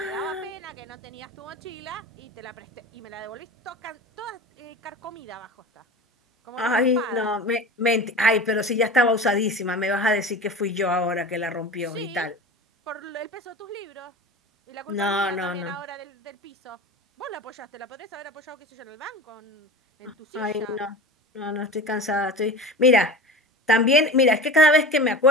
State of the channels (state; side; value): normal; both; correlation 0.33